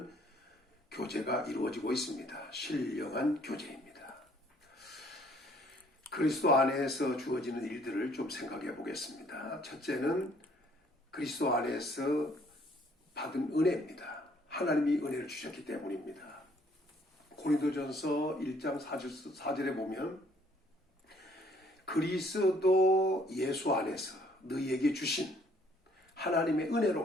교제가 이루어지고 있습니다. 신령한 교제입니다. 그리스도 안에서 주어지는 일들을 좀 생각해 보겠습니다. 첫째는 그리스도 안에서 받은 은혜입니다. 하나님이 은혜를 주셨기 때문입니다. 고린도전서 1장 4절에 보면 그리스도 예수 안에서 너희에게 주신 하나님의 은혜로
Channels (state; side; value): normal; both; correlation 0.62